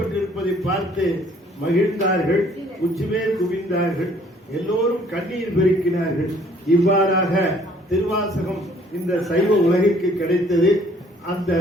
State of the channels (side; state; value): both; normal; correlation 0.59